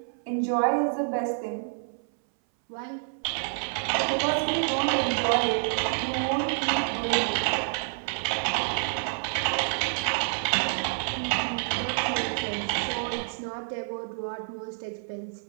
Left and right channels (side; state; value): left; silent; 58 dB below the other